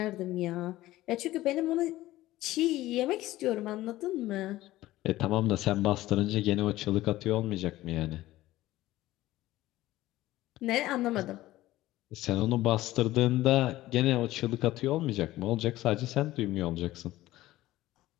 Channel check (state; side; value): quieter; right; 16.3 dB